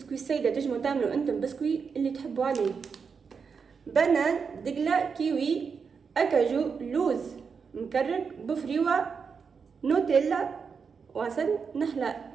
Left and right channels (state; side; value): quieter; left; 5.8 dB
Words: سيدة، تجموا تعملوا انتم بسكوي اللي تحبوا عليه. بنان، دقلة، كيوي، أكاجو، لوز مكرك، بفريوة، نوتيلا، وعسل نحلة.